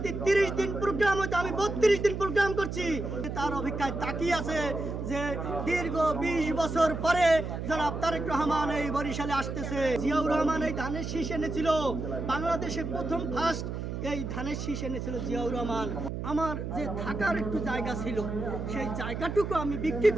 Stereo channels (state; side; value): noise; right; hum, 5 dB below the sound